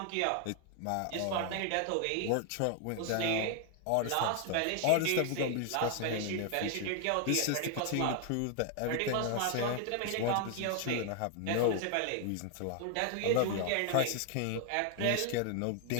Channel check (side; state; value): both; different; correlation 0.00